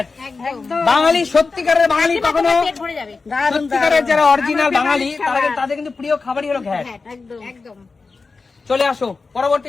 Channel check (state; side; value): quieter; right; 4.2 dB